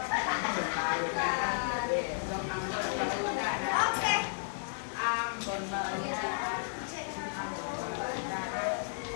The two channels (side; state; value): right; silent; 56 dB below the other